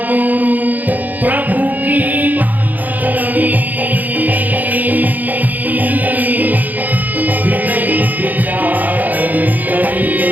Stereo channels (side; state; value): left; late; 0.082 ms